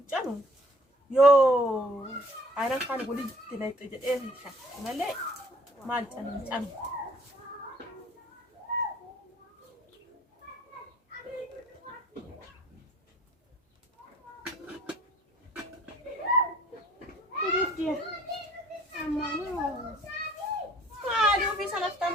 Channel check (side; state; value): both; normal; correlation 0.55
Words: يو أنا كان أقول لك تلاقي إيه شيء مالي مال تام كيف مالي وفي سنة